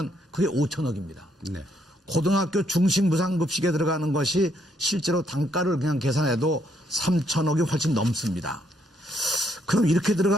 그게 5천억입니다. 네. 고등학교 중식 무상급식에 들어가는 것이 실제로 단가를 그냥 계산해도 3천억이 훨씬 넘습니다. 그럼 이렇게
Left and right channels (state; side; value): normal; both; correlation 0.73